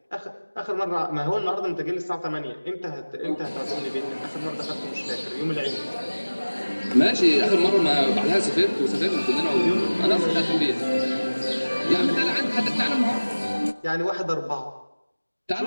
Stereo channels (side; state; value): both; inverted; correlation -1.00